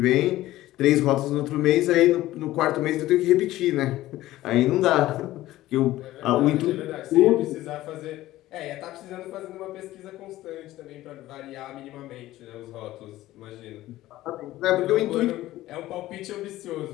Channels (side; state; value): right; quieter; 15.8 dB